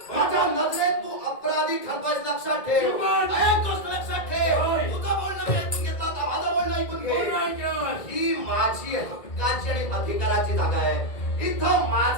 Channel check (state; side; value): late; right; 1.9 ms